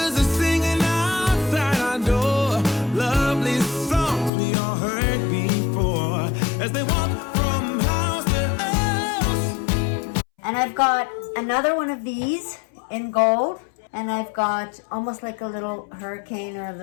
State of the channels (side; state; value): right; drops out; at 4.3 s